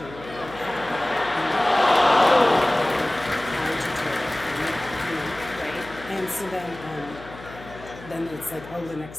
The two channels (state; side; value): noise; left; hum, 17 dB below the sound